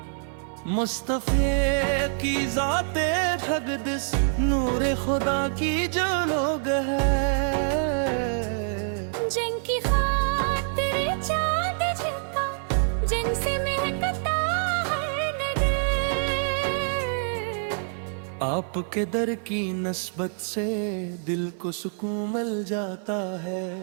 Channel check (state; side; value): silent; left; 55 dB below the other